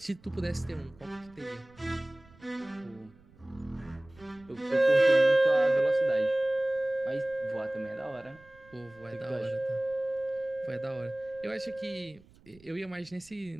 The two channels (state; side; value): noise; right; rumble, 26 dB below the sound